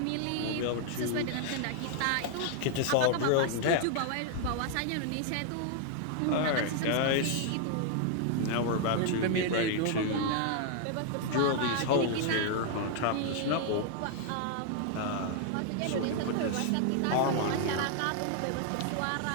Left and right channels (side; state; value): both; different; correlation 0.00